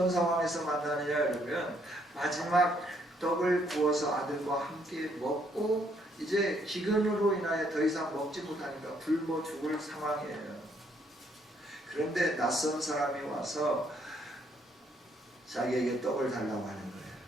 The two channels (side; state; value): both; normal; correlation 0.70